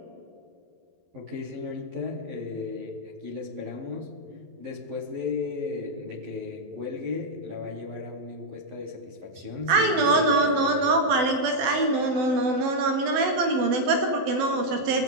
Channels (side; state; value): left; late; 12 ms